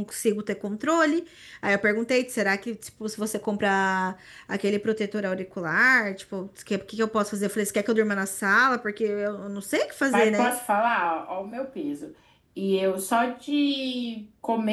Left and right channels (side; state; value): both; identical; correlation 1.00